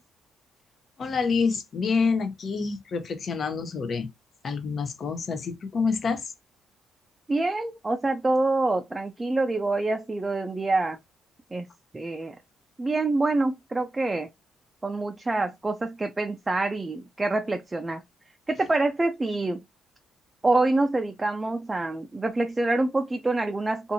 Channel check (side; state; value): both; normal; correlation 0.90